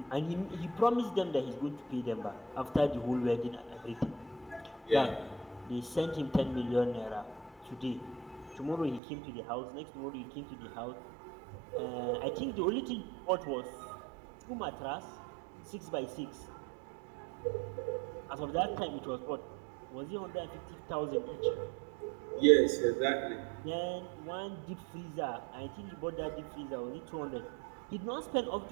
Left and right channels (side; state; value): left; drops out; at 9.0 s